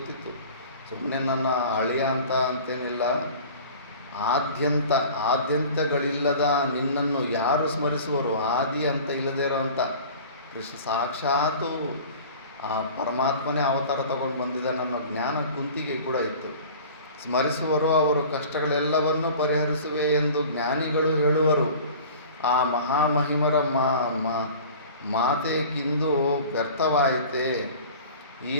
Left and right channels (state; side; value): inverted; both; correlation -0.42